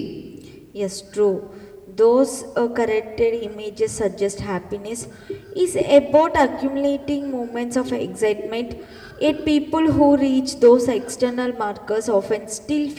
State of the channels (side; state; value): both; identical; correlation 1.00